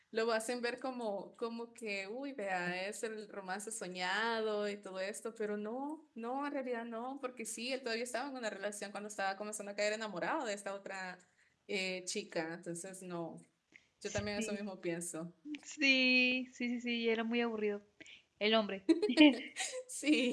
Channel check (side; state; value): both; identical; correlation 1.00